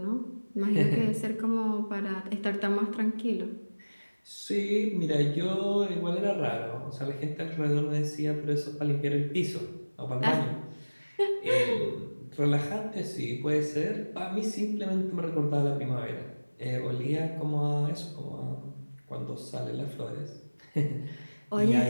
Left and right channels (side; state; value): both; inverted; correlation -1.00